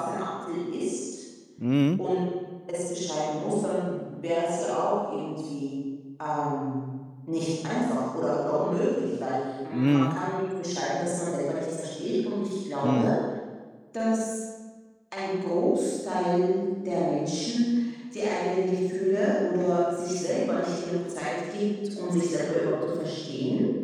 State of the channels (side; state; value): both; identical; correlation 1.00